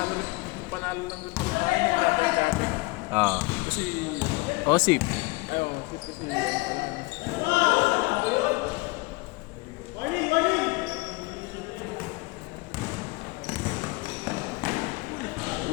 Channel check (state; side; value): quieter; right; 24.1 dB